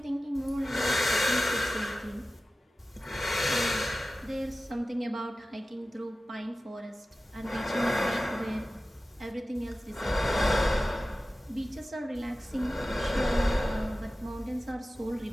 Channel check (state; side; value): normal; both; correlation 0.95